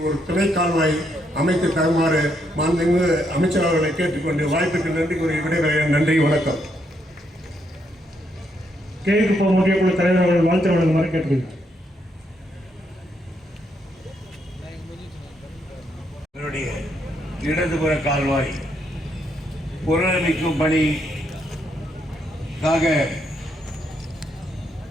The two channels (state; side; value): normal; both; correlation 0.76